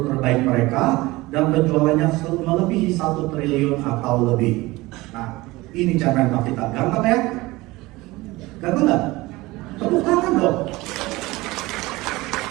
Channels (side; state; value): left; quieter; 20.5 dB